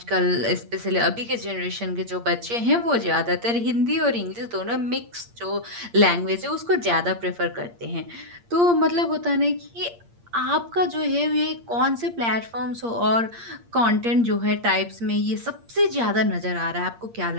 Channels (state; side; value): late; left; 8.6 ms